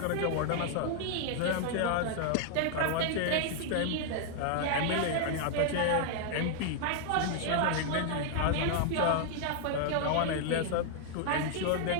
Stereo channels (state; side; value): different; both; correlation 0.00